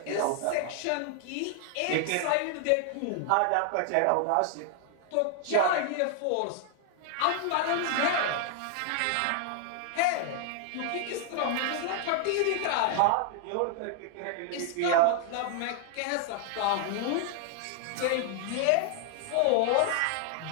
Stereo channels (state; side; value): different; both; correlation 0.00